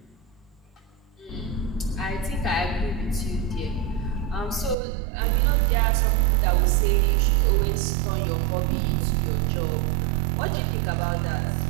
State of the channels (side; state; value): left; drops out; at 4.8 s